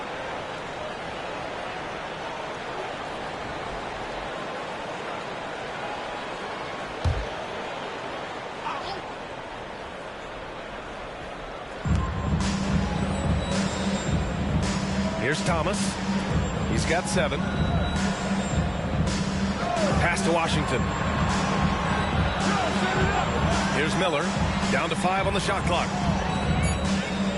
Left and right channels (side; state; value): both; identical; correlation 1.00